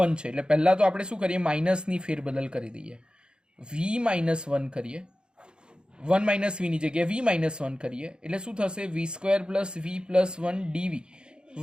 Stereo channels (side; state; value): left; late; 0.050 ms